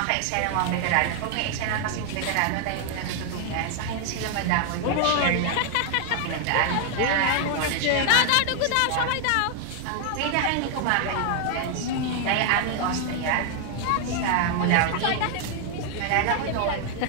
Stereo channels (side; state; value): both; different; correlation 0.00